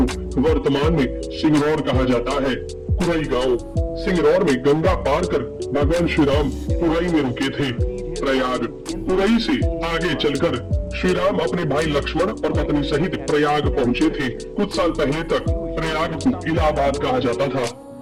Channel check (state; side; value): identical; both; correlation 1.00